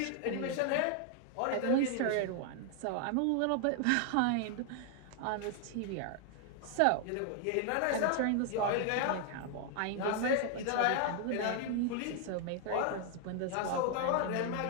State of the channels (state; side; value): different; both; correlation 0.00